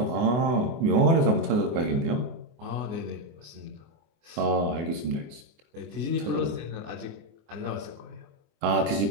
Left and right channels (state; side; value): late; left; 24 ms